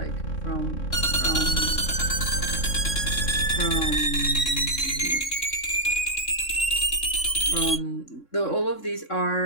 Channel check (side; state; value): right; late; 3.6 ms